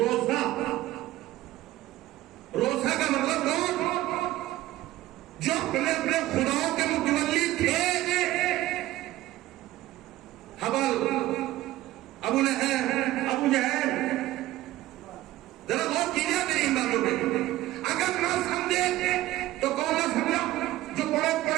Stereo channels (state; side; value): quieter; left; 15.8 dB